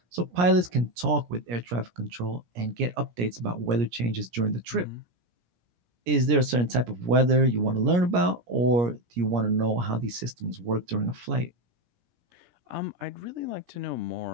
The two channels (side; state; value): left; late; 17 ms